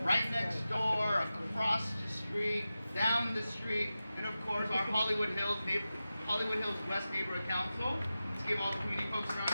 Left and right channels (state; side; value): inverted; both; correlation -0.94